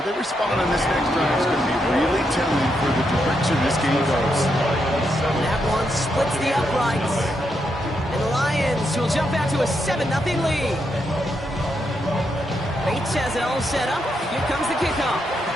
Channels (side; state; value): both; normal; correlation 0.81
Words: they respond on this next drive is going to be really telling for the direction this game goes. That one splits the uprights. And the Lions will jump out to a 7-0 lead. Bates has it all set up. Here comes the kickoff.